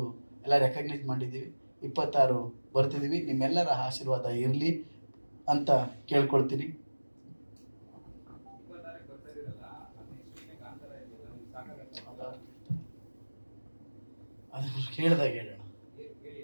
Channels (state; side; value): inverted; both; correlation -1.00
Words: ಎಲ್ಲ ರೆಕಗ್ನೈಸ್ ಮಾಡಿದ್ದೀವಿ. 26 ಬರ್ತಿದ್ದೀವಿ. ನಿಮ್ಮೆಲ್ಲರ ಆಶೀರ್ವಾದ ಇರಲಿ ಅಂತ ಕೇಳ್ಕೊಳ್ತೀನಿ. ಅದು ಕೇಳಿದಾಗ ಹೇಳೋಣ.